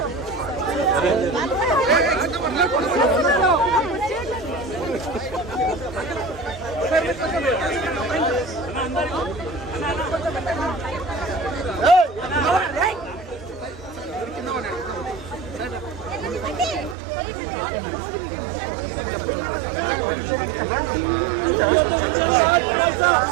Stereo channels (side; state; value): left; drops out; at 16.9 s